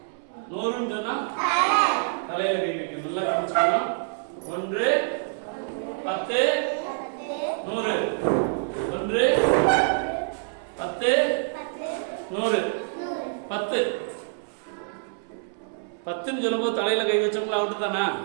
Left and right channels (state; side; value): silent; left; 61 dB below the other